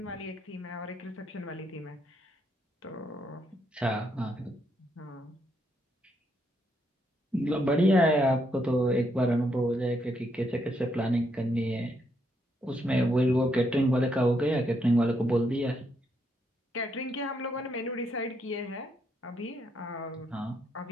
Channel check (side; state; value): both; normal; correlation 0.76